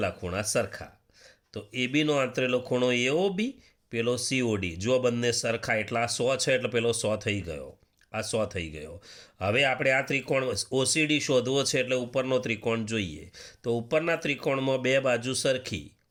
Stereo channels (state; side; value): identical; both; correlation 1.00